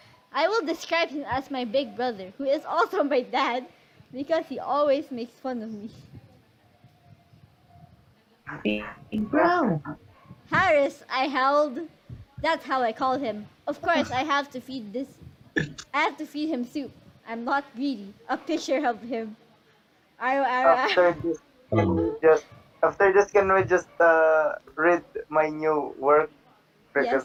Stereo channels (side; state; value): both; identical; correlation 1.00